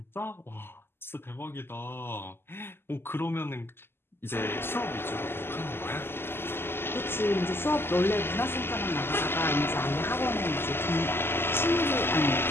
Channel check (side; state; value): right; late; 0.11 ms